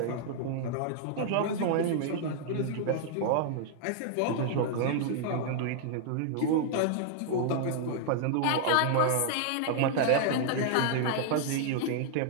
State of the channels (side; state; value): both; different; correlation -0.01